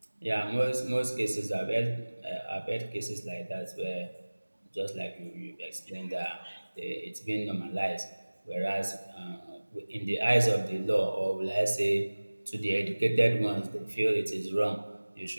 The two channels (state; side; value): inverted; both; correlation -1.00